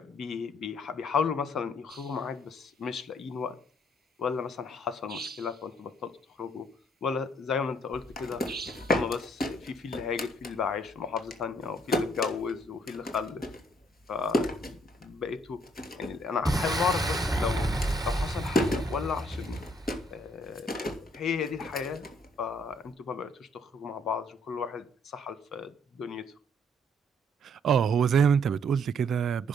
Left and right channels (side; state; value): both; normal; correlation 0.66